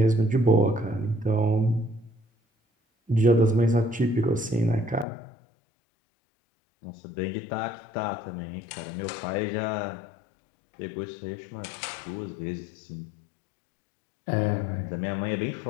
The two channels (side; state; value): right; drops out; at 5.1 s